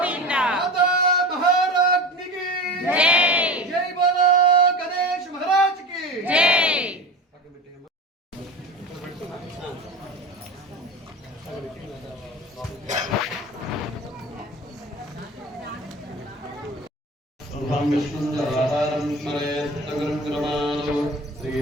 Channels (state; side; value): normal; both; correlation 0.32